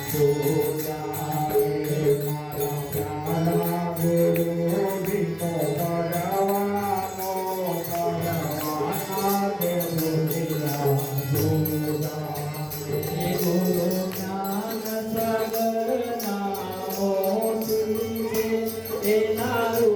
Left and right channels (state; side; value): identical; both; correlation 1.00